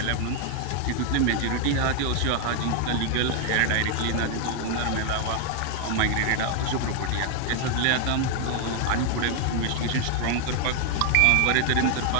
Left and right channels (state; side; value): different; both; correlation 0.00